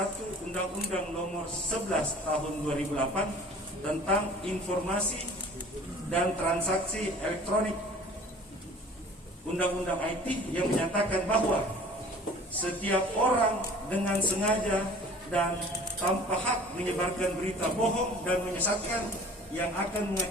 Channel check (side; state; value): both; normal; correlation 0.47